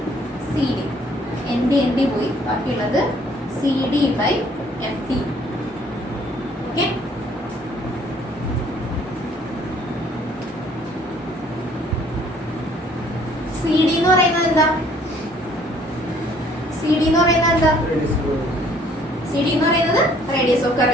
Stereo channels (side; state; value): both; normal; correlation 0.60